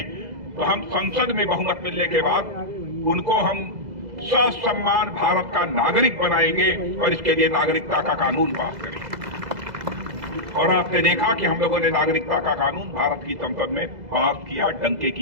तो हम संसद में बहुमत मिलने के बाद उनको हम ससम्मान भारत का नागरिक बनाएंगे और इसके लिए नागरिकता का कानून पास करेंगे। और आपने देखा कि हम लोगों ने नागरिकता का कानून भारत की संसद में पास किया, डंके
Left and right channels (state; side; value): late; left; 2.0 ms